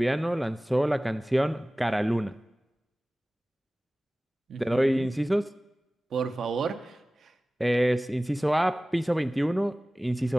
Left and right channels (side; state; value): both; normal; correlation 0.98